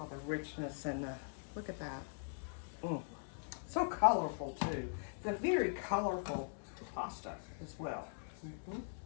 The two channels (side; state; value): right; silent; digital silence